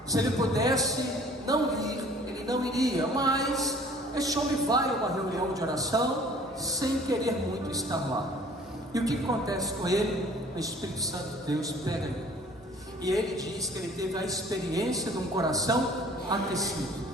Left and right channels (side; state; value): both; normal; correlation 0.53